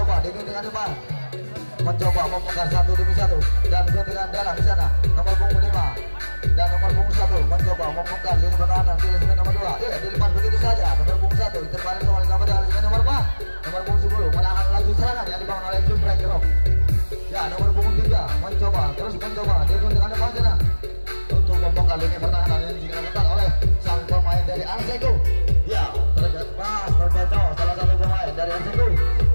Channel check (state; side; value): inverted; both; correlation -1.00